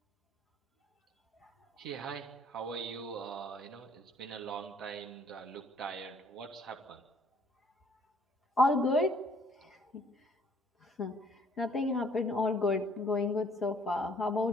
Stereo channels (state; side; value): normal; both; correlation 0.61